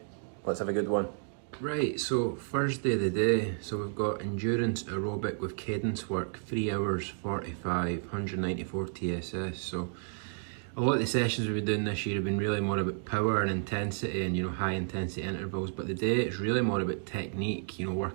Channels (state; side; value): silent; left; 57 dB below the other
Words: Let's have a good one. Right, so Thursday the day, so we've got endurance aerobic with cadence work, 3 hours 45, 194 TSS. So a lot of the sessions we've been doing this year have been really more about power and intensity and, high intensity intervals, but the day it's really more about technique,